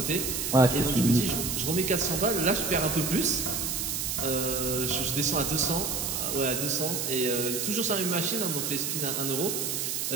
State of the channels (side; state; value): right; noise; hiss, 1 dB below the sound